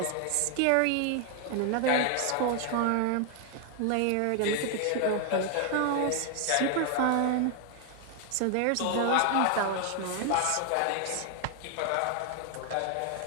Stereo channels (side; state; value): both; different; correlation 0.00